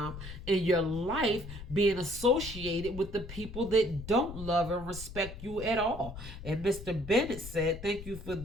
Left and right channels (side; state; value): left; noise; rumble, 11 dB below the sound